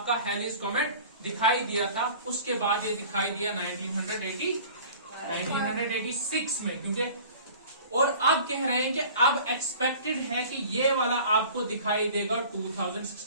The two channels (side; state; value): both; inverted; correlation -0.44